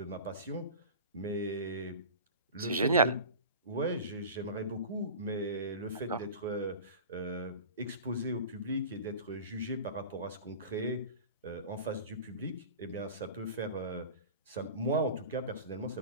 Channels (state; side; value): inverted; both; correlation -0.34